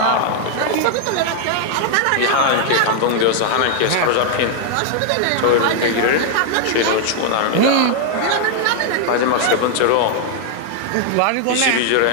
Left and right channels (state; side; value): different; both; correlation 0.00